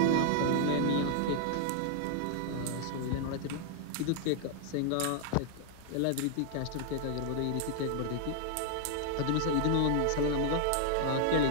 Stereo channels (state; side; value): different; both; correlation 0.00